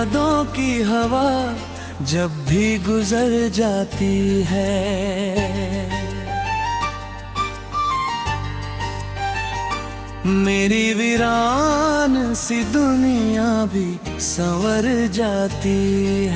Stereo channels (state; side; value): identical; both; correlation 1.00